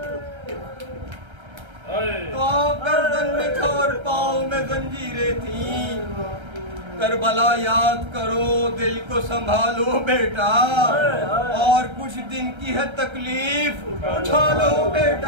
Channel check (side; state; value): left; late; 1.3 ms